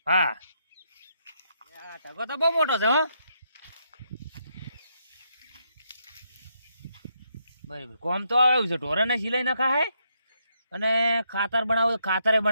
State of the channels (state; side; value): inverted; both; correlation -0.78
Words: હા ટકો તો બહુ મોટો છે. હો બરાબર. કોમ તો આવ્યું છે. ઢોરાને સિલાઈ નખાય અને ખાતર બનાવે ખાતરે